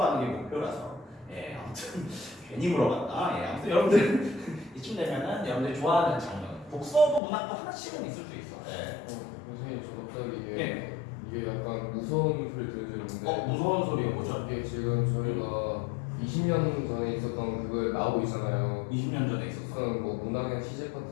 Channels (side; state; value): right; drops out; at 7.2 s